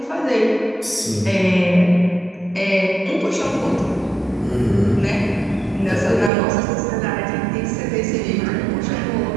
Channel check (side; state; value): left; drops out; at 6.3 s